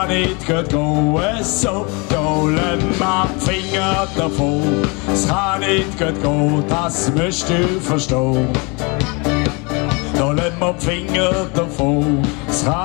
nicht gut gehen, so. Dolem ab Finger davon, es kann nicht gut gehen, das musst du verstehen. Dolem ab Finger davon, es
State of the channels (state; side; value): quieter; right; 30.0 dB